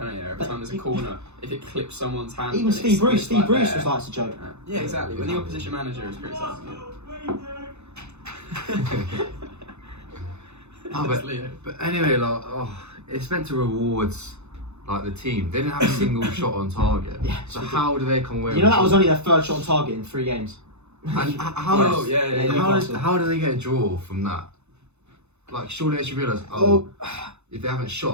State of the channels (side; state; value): left; late; 0.81 ms